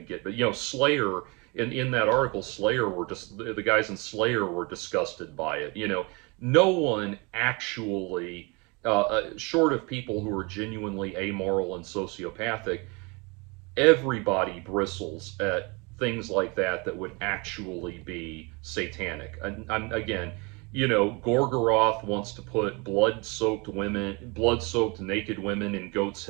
get, but Slayer, in that article, Slayer were just, the guys in Slayer were disgusted by it. No one actually, short of people who are genuinely amoral and sociopathic, everybody bristles at things like that would actually be satanic. And again, Gorgoroth wants to put blood-soaked naked women and goats'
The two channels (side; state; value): left; quieter; 28.6 dB